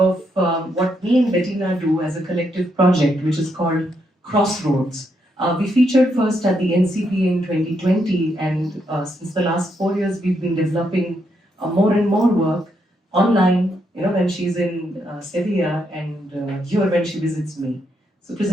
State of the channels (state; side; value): normal; both; correlation 0.78